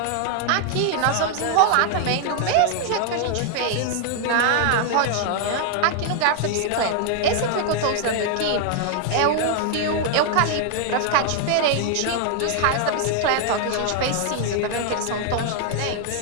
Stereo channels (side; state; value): both; different; correlation 0.00